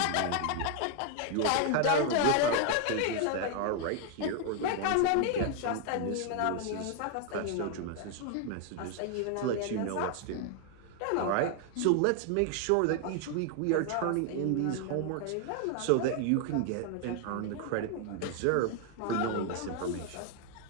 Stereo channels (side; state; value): both; different; correlation 0.00